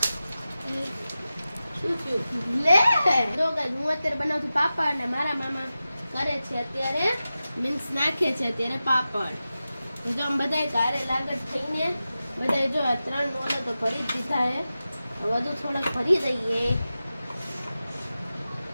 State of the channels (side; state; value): both; inverted; correlation -0.94